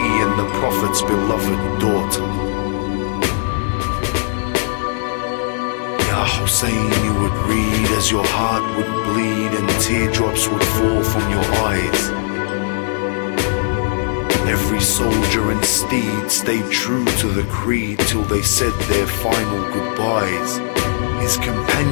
and the Prophet's beloved daughter. Ya Hussein, you would read as your heart would bleed and teardrops would fall from your eyes. Every soldier and steed stayed true to the creed till they said their final goodbyes. His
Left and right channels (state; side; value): silent; right; digital silence